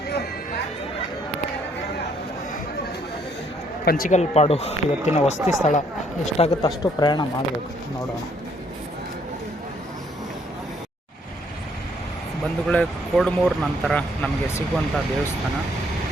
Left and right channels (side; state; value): both; normal; correlation 0.67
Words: ಪಂಚಿಕಲ್ಪಾಡು ಇವತ್ತಿನ ವಸತಿ ಸ್ಥಳ. ಎಷ್ಟಾಗುತ್ತೆ ಅಷ್ಟು ಪ್ರಯಾಣ ಮಾಡಬೇಕು, ನೋಡೋಣ. ಬಂಧುಗಳೇ, ಕೋಡ್ಮೂರು ನಂತರ ನಮಗೆ ಸಿಗುವಂಥ ದೇವಸ್ಥಾನ